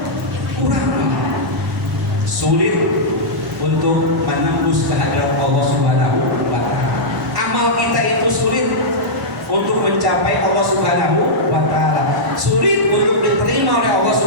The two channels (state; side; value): normal; both; correlation -0.10